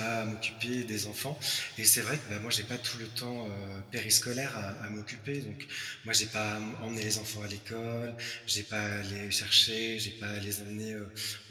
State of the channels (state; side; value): identical; both; correlation 1.00